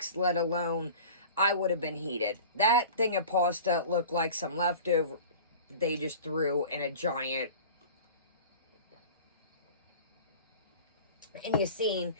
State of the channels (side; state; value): both; inverted; correlation -0.39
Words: let alone, I would have been heated. That thing of pasta looked like some leftover they just threw in a giant. And you seen